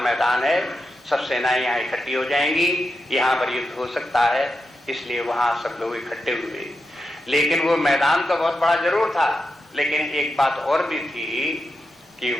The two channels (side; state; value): both; normal; correlation 0.88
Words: है, सब सेनाएं यहाँ इकट्ठी हो जाएंगी, यहाँ पर युद्ध हो सकता है, इसलिए वहां सब लोग इकट्ठे हुए। लेकिन वो मैदान तो बहुत बड़ा जरूर था, लेकिन एक बात और भी थी कि